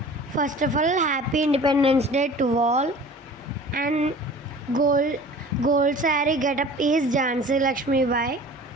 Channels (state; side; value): normal; both; correlation 0.43